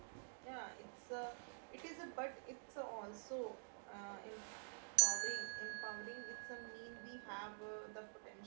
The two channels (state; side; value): silent; left; digital silence